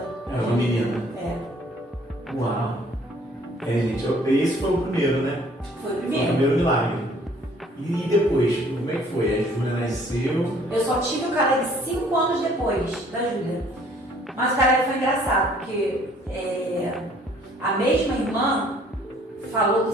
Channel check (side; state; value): both; normal; correlation 0.58